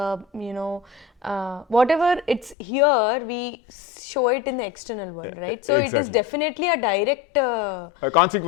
whatever it's here, we show it in the external world, right? So Exactly. it is definitely a direct A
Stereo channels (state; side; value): drops out; right; at 2.6 s